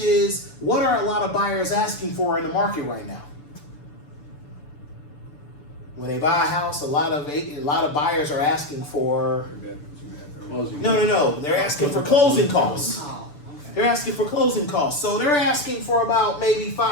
what are a lot of buyers asking for in the market right now? When they buy a house, a lot of buyers are asking for, Closing. no, they're asking for closing costs. They're asking for closing costs. So they're asking for about maybe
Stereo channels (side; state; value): right; late; 6.9 ms